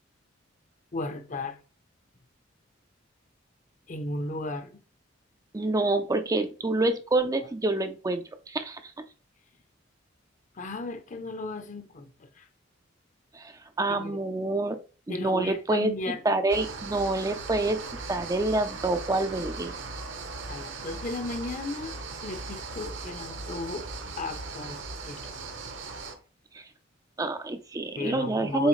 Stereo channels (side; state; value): both; normal; correlation 0.51